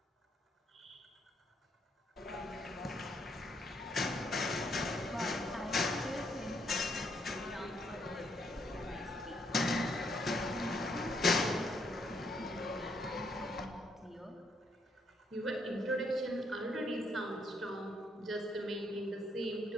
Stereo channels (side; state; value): both; normal; correlation 0.72